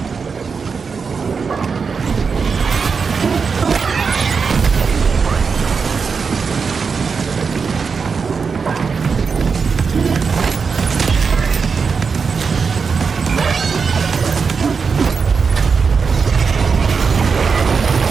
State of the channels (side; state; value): left; quieter; 5.4 dB